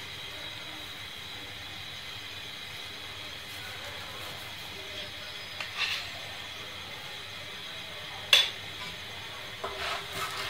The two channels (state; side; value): identical; both; correlation 1.00